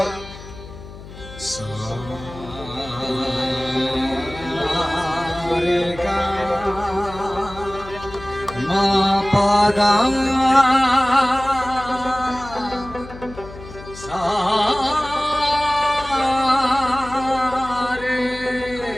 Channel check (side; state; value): left; noise; hum, 15 dB below the sound